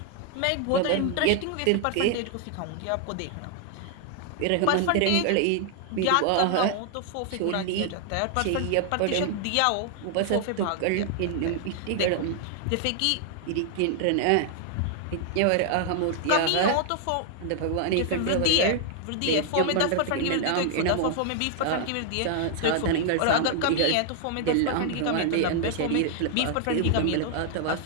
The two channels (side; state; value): both; different; correlation 0.00